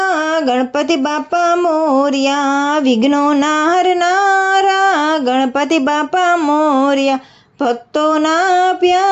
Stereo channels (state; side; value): identical; both; correlation 1.00